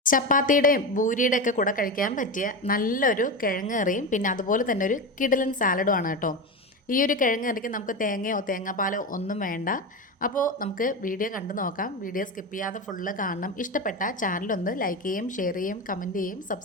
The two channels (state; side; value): normal; both; correlation 0.20